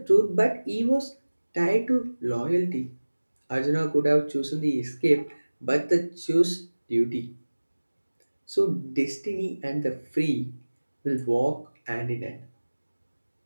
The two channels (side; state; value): both; inverted; correlation -1.00